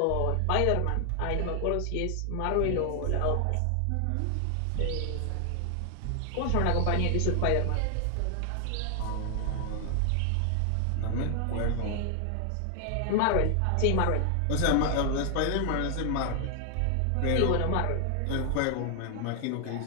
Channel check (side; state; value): both; different; correlation 0.00